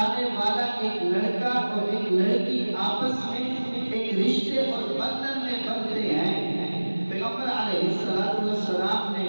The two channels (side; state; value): both; inverted; correlation -1.00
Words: والا ایک لڑکا اور ایک لڑکی آپس میں ایک رشتے اور بندھن میں بندھتے ہیں، پیغمبر علیہ السلام نے